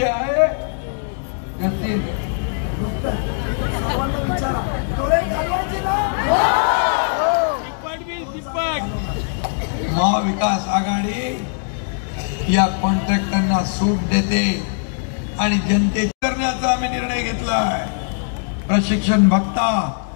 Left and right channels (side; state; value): right; silent; digital silence